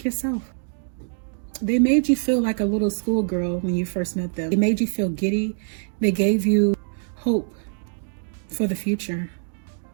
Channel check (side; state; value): left; silent; digital silence